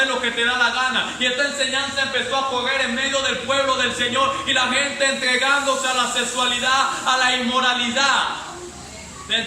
lo que te da la gana. Y esta enseñanza empezó a correr en medio del pueblo del Señor, y la gente entregándose a la sexualidad, a la inmoralidad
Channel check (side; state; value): both; identical; correlation 1.00